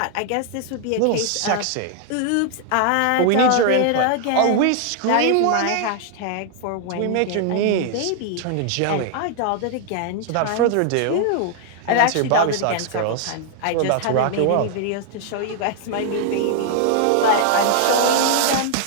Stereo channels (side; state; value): both; different; correlation 0.00